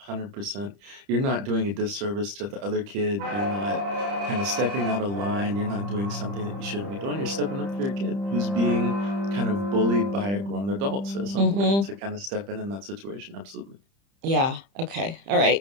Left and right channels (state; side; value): late; left; 30 ms